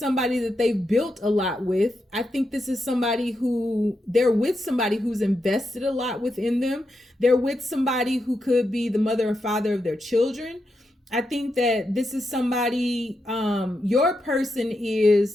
that they've built a lot with. I think this is somebody they're with somebody who's invested a lot within them. They're with somebody who could be the mother and father of their children. I think that this is somebody, your person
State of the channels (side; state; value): both; normal; correlation 0.85